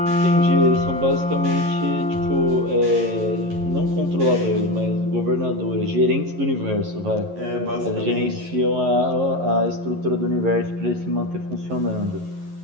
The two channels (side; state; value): left; late; 11 ms